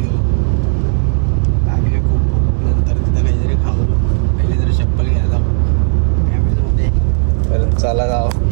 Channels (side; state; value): left; silent; digital silence